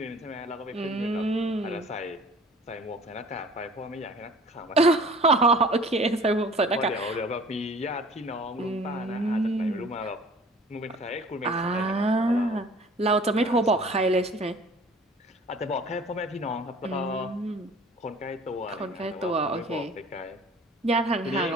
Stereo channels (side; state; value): both; normal; correlation 0.48